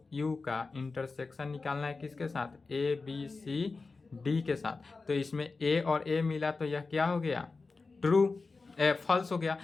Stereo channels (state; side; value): quieter; right; 4.0 dB